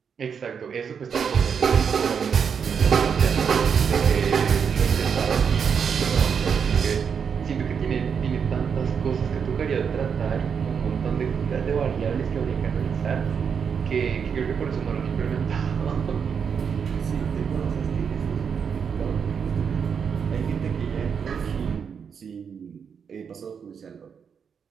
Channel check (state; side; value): quieter; left; 6.8 dB